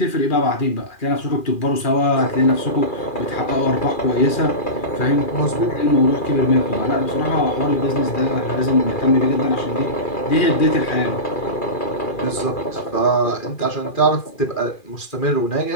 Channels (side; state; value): right; late; 2.4 ms